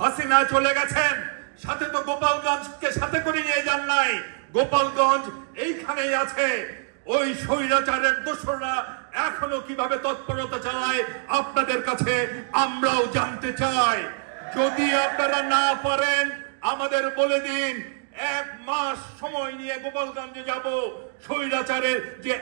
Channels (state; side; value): silent; left; 62 dB below the other